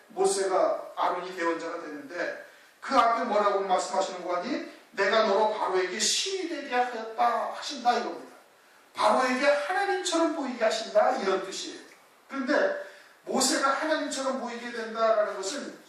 모세가 아론이 대언자가 되는데 그 앞에 뭐라고 말씀하시는 거 아니? 내가 너로 바로에게 신이 되게 하였다 하신다 이겁니다. 바로에게 하나님처럼 보이게 하신다 이런 뜻이에요. 그런데 모세가 하나님처럼 보이게 된다라는 것은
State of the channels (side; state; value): both; identical; correlation 1.00